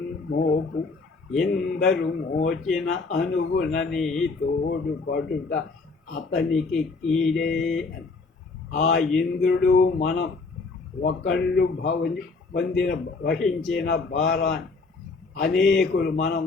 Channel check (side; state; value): right; quieter; 4.0 dB